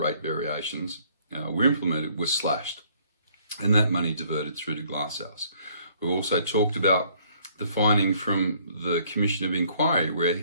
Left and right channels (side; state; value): both; inverted; correlation -0.62